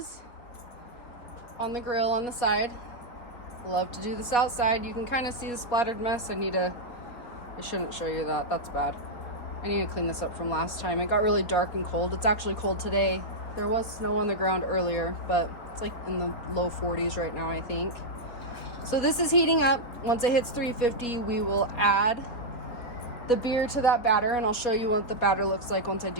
on the grill on the side. Love to do this outside. You can kind of see the splattered mess. I shouldn't show you that. That's bad. I need to clean this up from last time. It got really dark and cold. It's actually cold today. There was snow on the ground earlier, but it's like in the low 40s right now, I think. So this is heating up. Once it hits 350, we will add the beer to that batter, and I'll show you what the batter looks like once I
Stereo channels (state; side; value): late; right; 4.2 ms